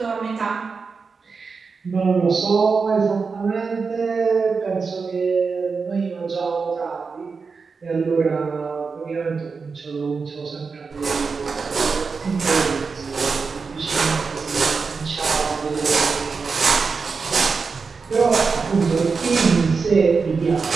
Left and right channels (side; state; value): left; quieter; 4.9 dB